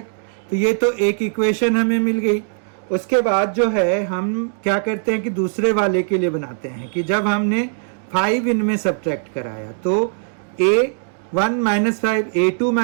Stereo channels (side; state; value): left; silent; digital silence